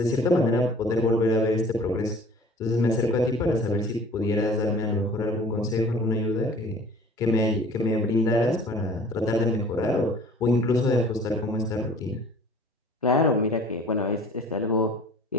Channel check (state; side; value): normal; both; correlation 0.48